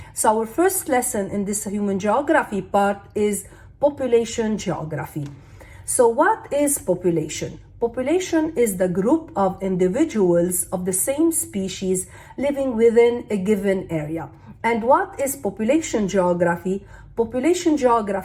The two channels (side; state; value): both; identical; correlation 1.00